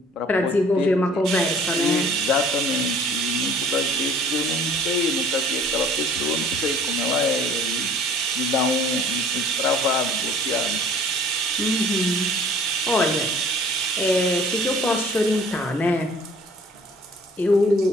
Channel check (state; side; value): normal; both; correlation 0.51